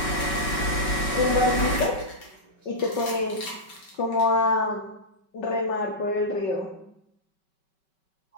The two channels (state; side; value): late; right; 5.3 ms